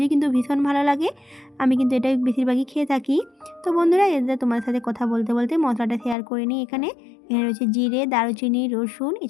কিন্তু ভীষণ ভালো লাগে। আমি কিন্তু এটাই বেশিরভাগই খেয়ে থাকি। তো বন্ধুরা, এদের তোমার সাথে কথা বলতে বলতে মশলাটা শেয়ার করে নিই। এখানে রয়েছে জিরে, দারুচিনি, রসুন,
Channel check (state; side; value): drops out; right; at 6.2 s